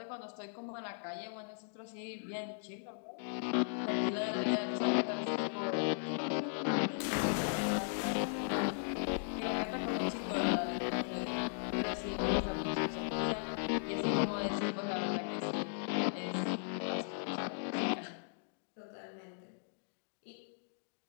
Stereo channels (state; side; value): silent; right; digital silence